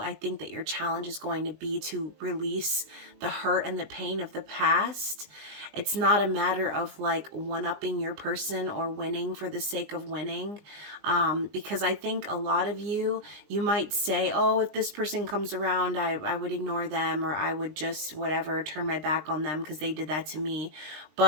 think that your challenge is going to be to release the hurt and the pain of the past. It's not a matter of like one-upping your person or winning for the sake of winning. Because I think a lot of you might say, oh, if this person comes around, I would ignore them, or I would just whatever, turn my back on them because they did that to me.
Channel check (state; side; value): late; left; 20 ms